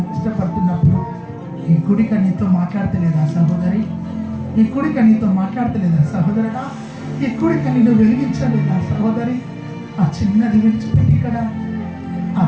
ఇష్టపడుతున్నప్పుడు ఈ కుడిక నీతో మాట్లాడతలేదా సహోదరి? ఈ కుడిక నీతో మాట్లాడతలేదా సహోదరుడా? ఈ కుడిక నిన్ను వెలిగించలేదా సహోదరి? ఆ చిన్నది విడిచిపెట్టి ఇక్కడ ఆ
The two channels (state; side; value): identical; both; correlation 1.00